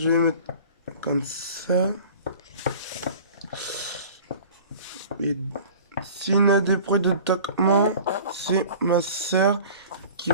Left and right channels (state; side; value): inverted; both; correlation -0.43